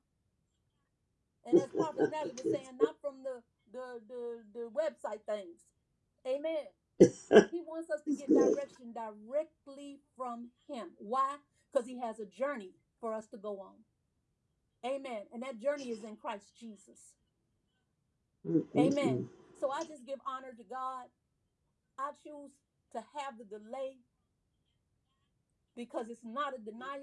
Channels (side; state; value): both; identical; correlation 1.00